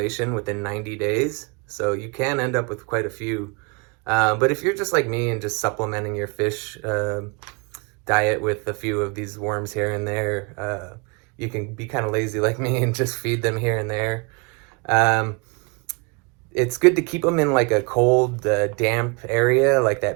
within 90 days. So you can end up with quite a few. But if you're just like me and just supplementing your fish diet with a few of these worms here and there, you can be kind of lazy like me and just feed them here and there. It's good to keep them in like a cold, damp area, like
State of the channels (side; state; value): left; quieter; 30.4 dB